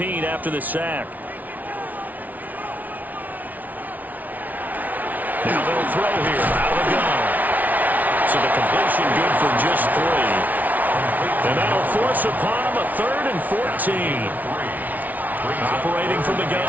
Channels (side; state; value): left; late; 0.077 ms